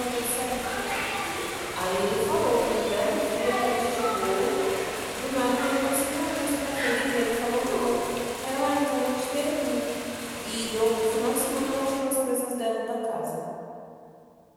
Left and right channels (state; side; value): identical; both; correlation 1.00